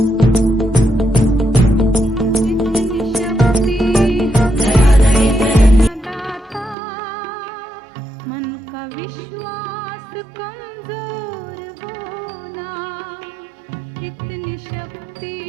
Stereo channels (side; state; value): left; drops out; at 6.8 s